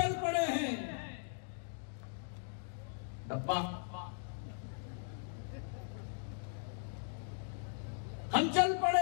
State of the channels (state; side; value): silent; right; digital silence